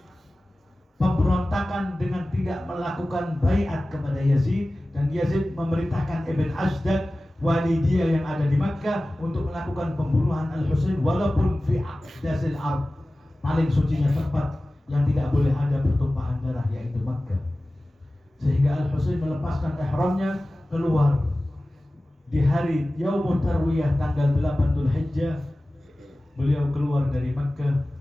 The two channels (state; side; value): normal; both; correlation 0.97